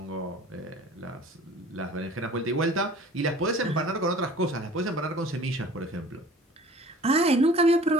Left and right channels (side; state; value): both; normal; correlation 0.46